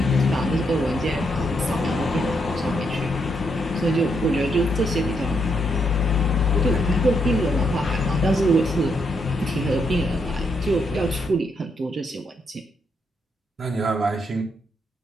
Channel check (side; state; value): both; normal; correlation 0.78